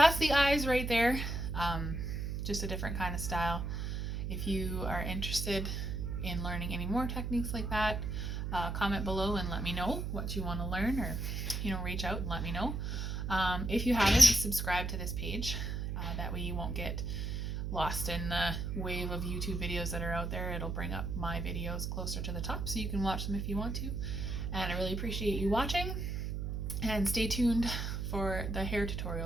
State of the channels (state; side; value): noise; right; hum, 2 dB below the sound